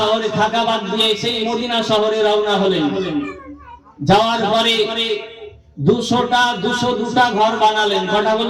থাকা বাদ দিয়ে সেই মদিনা শহরে রওনা হলেন। যাওয়ার পরে 202টা ঘর বানালেন। কটা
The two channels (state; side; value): identical; both; correlation 1.00